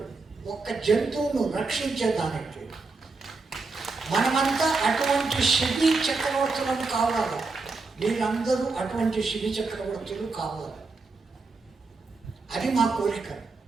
ఒక్క జంతువును రక్షించేదానికి. మనమంతా అటువంటి శిబి చక్రవర్తులను కావాలి. మీరందరూ అటువంటి శిబి చక్రవర్తులు కావాలి. అది మా కోరిక.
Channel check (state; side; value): quieter; left; 4.0 dB